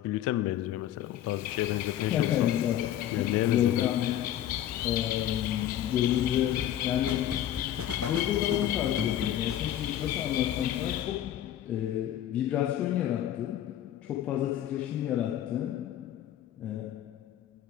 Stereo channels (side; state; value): right; quieter; 11.7 dB